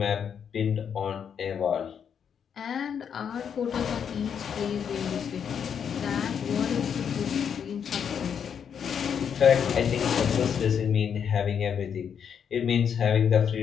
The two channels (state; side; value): quieter; right; 7.7 dB